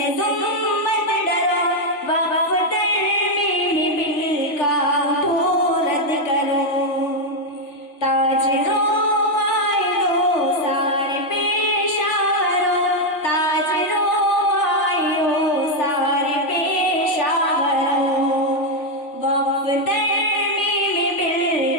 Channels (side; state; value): right; late; 3.4 ms